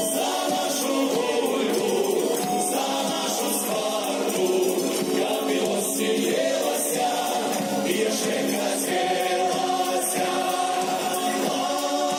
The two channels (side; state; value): both; identical; correlation 1.00